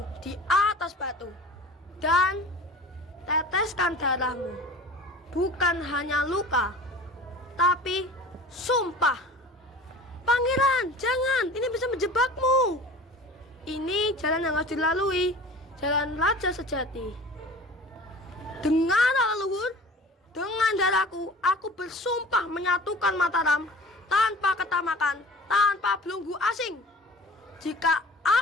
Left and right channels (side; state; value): both; normal; correlation 0.41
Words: di atas batu. Dan teteskan darahmu. Bukan hanya luka, tapi sumpah. Pangeran, jangan, ini bisa menjebakmu. Ini jalan yang harus dilalui, jalan raja sejati. Dengarlah leluhur, dengan darahku aku bersumpah menyatukan Mataram tanpa ketamakan, tanpa belenggu asing. Jika